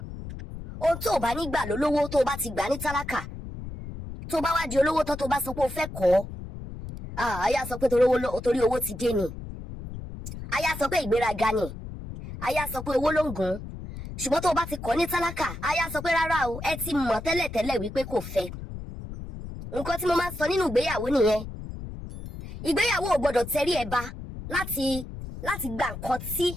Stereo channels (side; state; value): left; noise; rumble, 10 dB below the sound